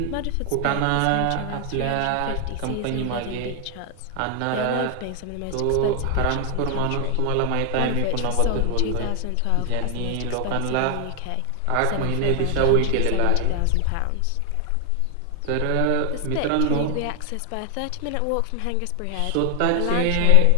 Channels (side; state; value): both; different; correlation 0.00